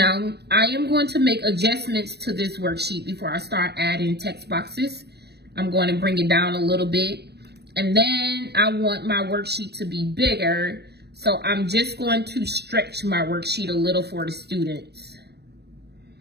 I am going to make adjustments to this worksheet before I start adding text boxes. I'm going to bring it down a little bit. And then I want my worksheet to be bigger. So I'm just going to stretch my worksheet a little for the students,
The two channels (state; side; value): late; left; 0.48 ms